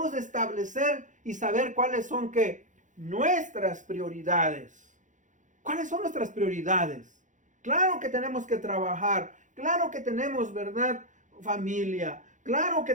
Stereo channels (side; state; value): left; late; 0.36 ms